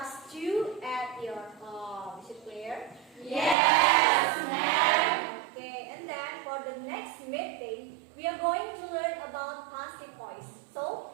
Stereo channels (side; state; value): left; drops out; at 3.6 s